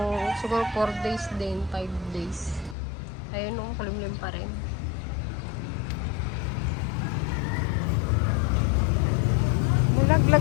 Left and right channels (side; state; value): right; drops out; at 2.8 s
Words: siguro 4 days din, 5 days. Ayun, kalimlim pa rin.